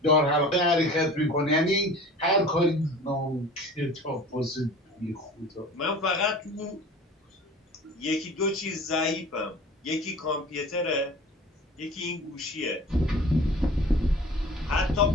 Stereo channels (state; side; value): normal; both; correlation 0.42